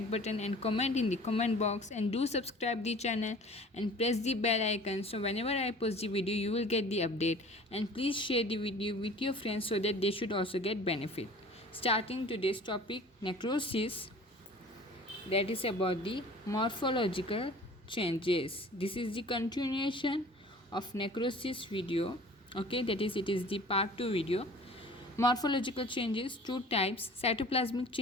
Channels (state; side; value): normal; both; correlation 0.46